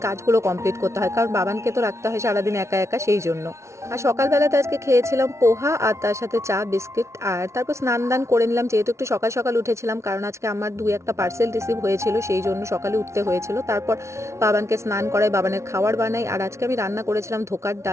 কাজগুলো কমপ্লিট করতে হয়, কারণ বাবানকে তো রাখতে হয় সারাদিন একা একা, সেই জন্য। আর সকালবেলাতে আজকে খেয়েছিলাম পোহা আর তার সাথে চা বিস্কিট, আর তারপর স্নান দান করে নিলাম, যেহেতু একটু সকাল সকাল উঠেছিলাম, কারণ আজকে আমার একটা পার্সেল রিসিভ হয়েছিল, সেই জন্য সকালে উঠতে হয়েছিল। তারপর বাবানকে স্নান করাই, বাবানের খাবার বানাই, আর আজকে আমি রান্না করেছিলাম ধোকার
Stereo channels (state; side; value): late; left; 0.13 ms